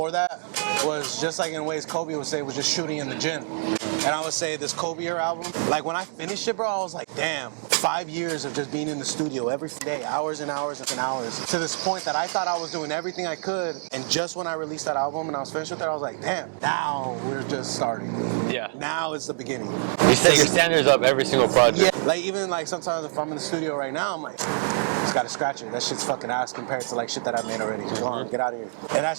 that was just like in ways Kobe would say was just shooting in the gym. And I would say this Kobe year album, like when I finished it, bro, I was like, damn, 5 years of just being in the studio every day, hours and hours and hours, to this point that I thought I was doing everything I could. And just when I released that album and I was finished with it, I was like, damn, now we're just starting. Yeah. Now is the beginning. You set your standards up every single project. Yeah, like even like sometimes if I'm in the studio right now, I'm like, just gotta scratch it. That shit's fucking ass compared to like shit that I made already. Go on, get out of here. And that's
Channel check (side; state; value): left; silent; digital silence